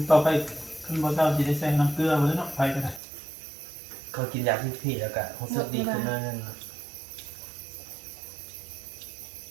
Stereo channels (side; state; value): left; drops out; at 3.0 s